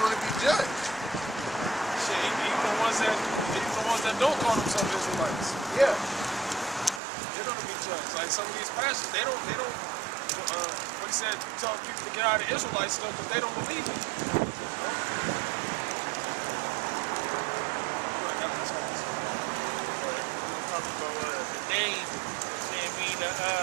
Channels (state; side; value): drops out; left; at 7.0 s